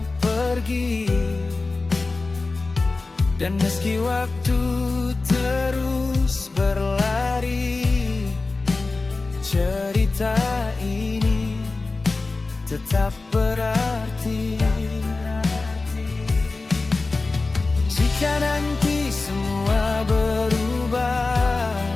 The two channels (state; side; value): quieter; right; 3.6 dB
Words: pergi. Dan meski waktu terus berlari, cerita ini tetap berarti. Jika nanti semua berubah